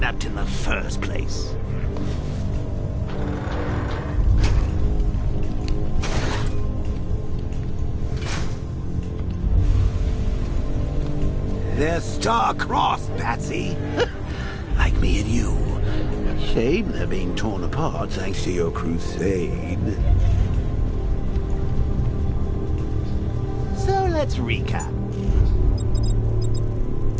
in the first place. They're star-crossed, Patsy. Like me and you. Shame they're being torn apart thanks to your crusade. So let's recap.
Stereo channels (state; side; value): identical; both; correlation 1.00